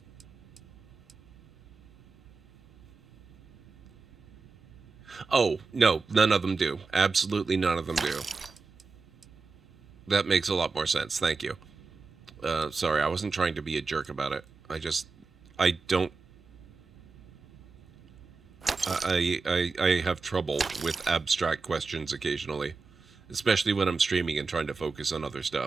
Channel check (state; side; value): quieter; left; 4.3 dB